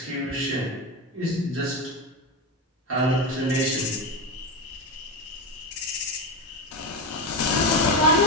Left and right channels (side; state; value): both; normal; correlation 0.16